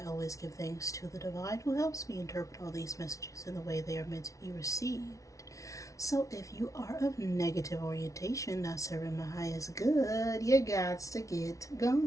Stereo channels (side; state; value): right; late; 0.16 ms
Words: always give thanks to the divine who helps me interpret all these messages in the way they are meant to be received. So if you are of negative orientation, not serving my highest good, you got to get